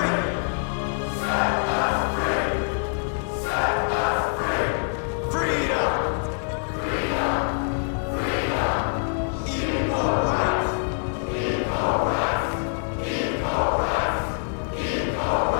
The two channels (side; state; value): right; silent; 62 dB below the other